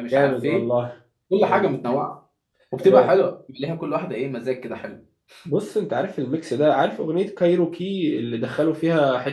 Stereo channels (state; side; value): identical; both; correlation 1.00